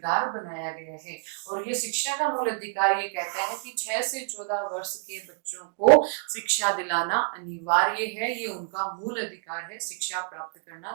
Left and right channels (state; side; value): silent; left; digital silence